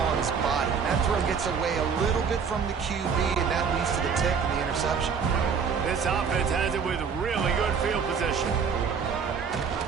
on his body. And that throw gets away a little bit from the QB, and that leads to the tick and the interception. This offense has it with really good field position.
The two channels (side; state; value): left; quieter; 6.2 dB